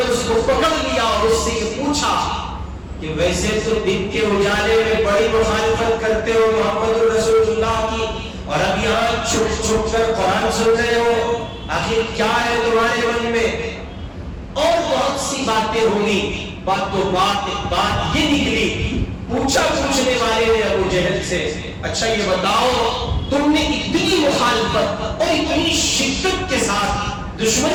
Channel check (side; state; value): both; identical; correlation 1.00